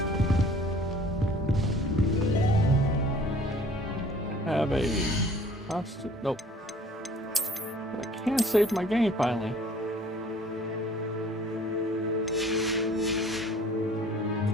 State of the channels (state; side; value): normal; both; correlation 0.52